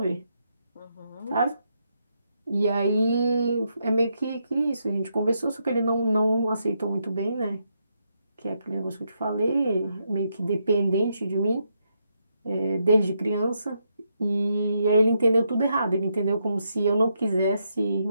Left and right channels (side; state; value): both; inverted; correlation -0.80